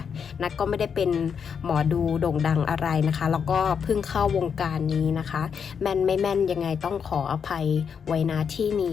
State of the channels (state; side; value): quieter; right; 6.8 dB